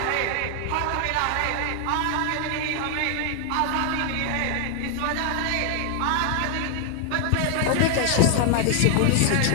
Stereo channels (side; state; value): both; different; correlation 0.00